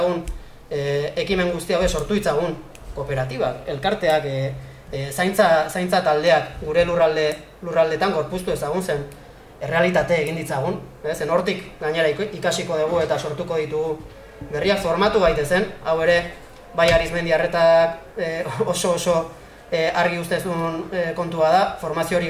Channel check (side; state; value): both; identical; correlation 1.00